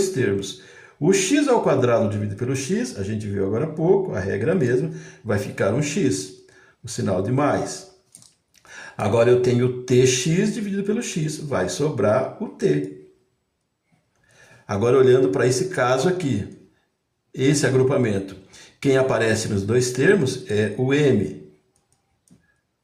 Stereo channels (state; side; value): identical; both; correlation 1.00